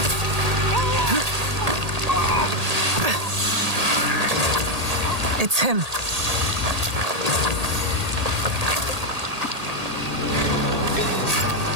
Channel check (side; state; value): left; late; 1.8 ms